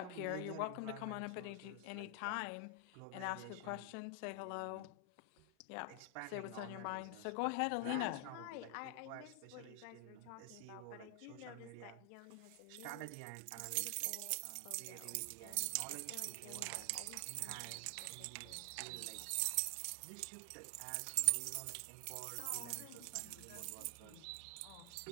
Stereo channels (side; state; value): both; different; correlation 0.00